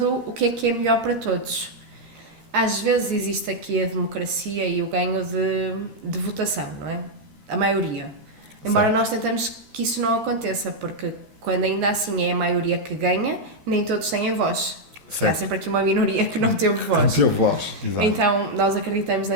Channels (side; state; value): left; late; 13 ms